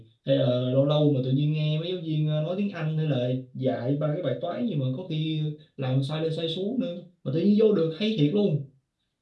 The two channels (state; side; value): identical; both; correlation 1.00